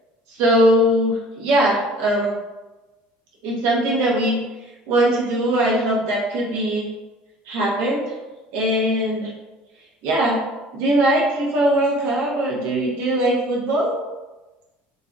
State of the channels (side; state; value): both; normal; correlation 0.49